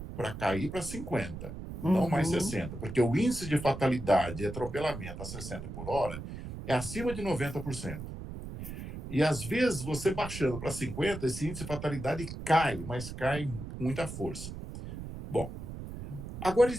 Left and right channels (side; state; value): right; noise; rumble, 9 dB below the sound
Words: para cair para 50, não mais 60, porque o índice de fatalidade e atropelamento a 60 por hora é acima de 90%. E, às vezes, você baixando para 50, esse índice de fatalidade cai, mas cai com muita força. Bom, agora